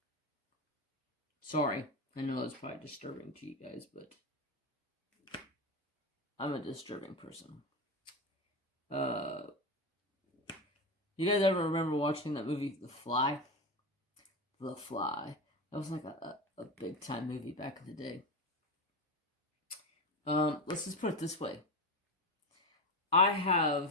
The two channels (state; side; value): normal; both; correlation 0.19